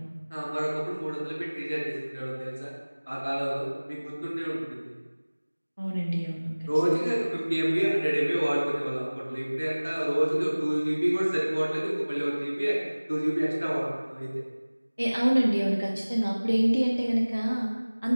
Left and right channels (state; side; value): inverted; both; correlation -1.00